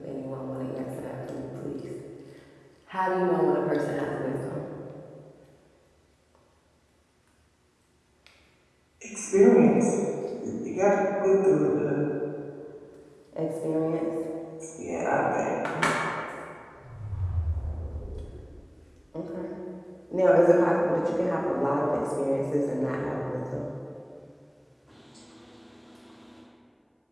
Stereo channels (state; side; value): identical; both; correlation 1.00